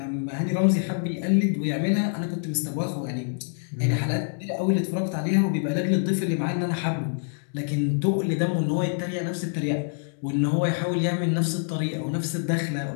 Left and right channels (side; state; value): right; silent; digital silence